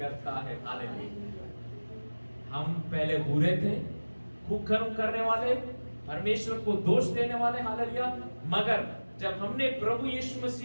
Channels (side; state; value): both; inverted; correlation -1.00